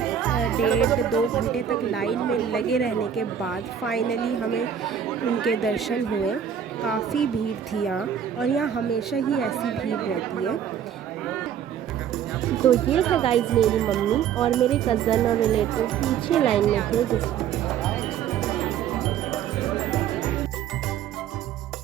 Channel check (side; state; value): left; quieter; 8.6 dB